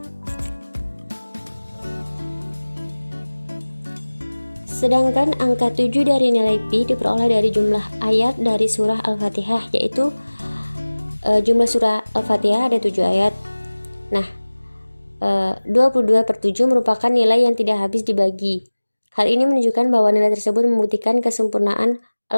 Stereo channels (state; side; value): inverted; both; correlation -1.00